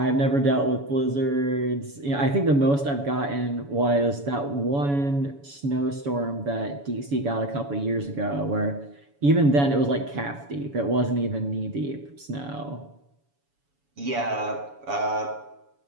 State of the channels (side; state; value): left; late; 7.1 ms